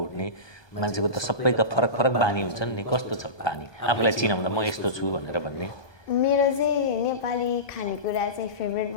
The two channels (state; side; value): late; right; 1.2 ms